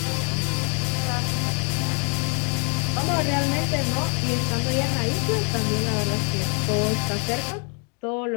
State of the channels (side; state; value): right; quieter; 36.2 dB